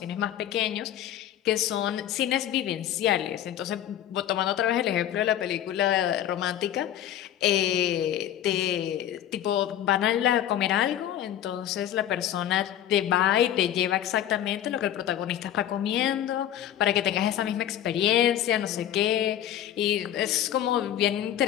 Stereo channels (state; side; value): quieter; right; 11.3 dB